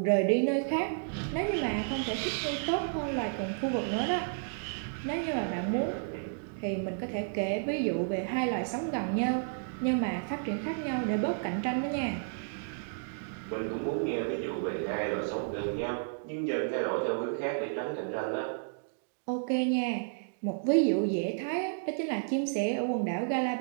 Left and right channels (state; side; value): silent; left; digital silence